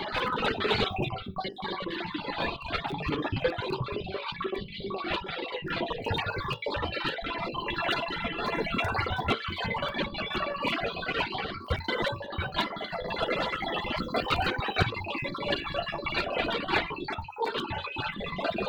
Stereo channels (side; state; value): both; identical; correlation 1.00